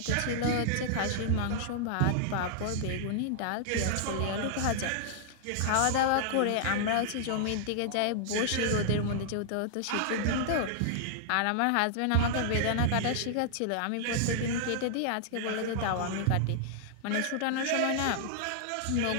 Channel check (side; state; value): both; different; correlation -0.01